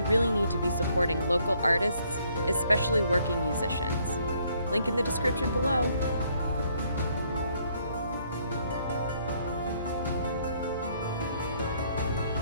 really need to be supporting local artists, especially working musicians. Link in the description below.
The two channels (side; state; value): both; inverted; correlation -0.67